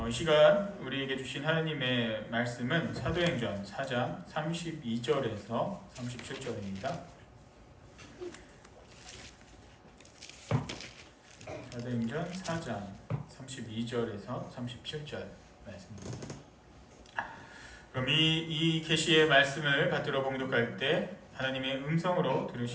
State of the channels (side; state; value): both; identical; correlation 1.00